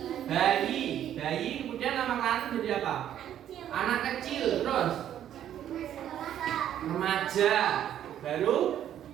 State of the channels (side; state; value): left; quieter; 10.7 dB